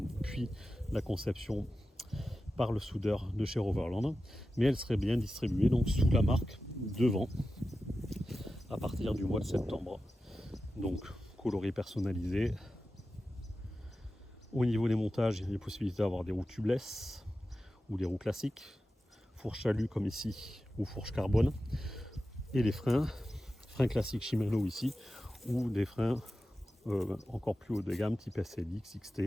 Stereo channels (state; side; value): normal; both; correlation 0.93